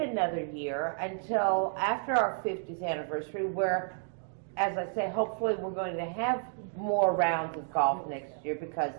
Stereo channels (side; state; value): left; silent; 57 dB below the other